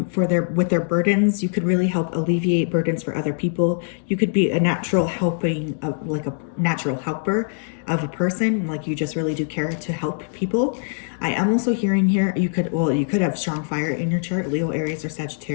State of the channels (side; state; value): right; silent; digital silence